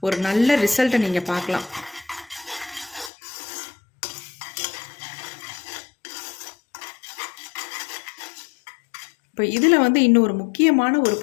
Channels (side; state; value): right; drops out; at 3.1 s